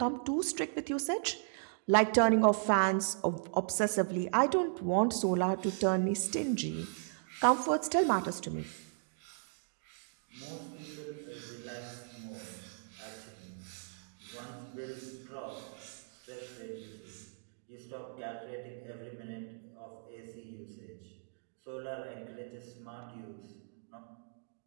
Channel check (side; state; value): left; silent; digital silence